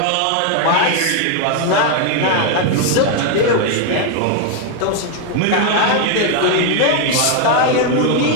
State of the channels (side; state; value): both; different; correlation 0.01